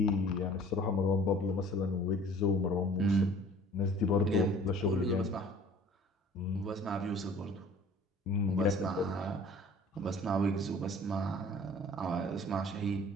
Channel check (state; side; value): normal; both; correlation 0.49